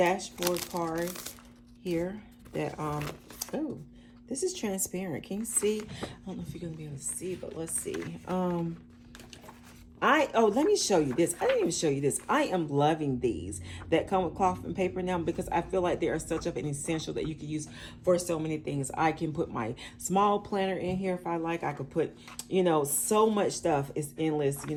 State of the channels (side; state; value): both; identical; correlation 1.00